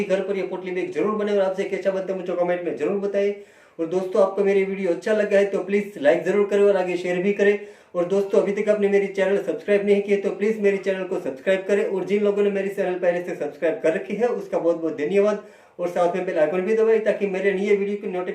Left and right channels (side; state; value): both; identical; correlation 1.00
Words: घर पर ये पोटली बैग जरूर बनाए और आपसे कैसा बनता है मुझे कमेंट में जरूर बताइए। और दोस्तों आपको मेरी वीडियो अच्छा लगा है तो प्लीज लाइक जरूर करें और आगे शेयर भी करें। और दोस्तों अभी तक आपने मेरी चैनल सब्सक्राइब नहीं किया तो प्लीज मेरी चैनल को सब्सक्राइब करें। और जिन लोगों ने मेरी चैनल पहले से सब्सक्राइब कर रखी है उसका बहुत बहुत धन्यवाद। और साथ में बेल आइकन भी दबाएं ताकि मेरे नए वीडियो की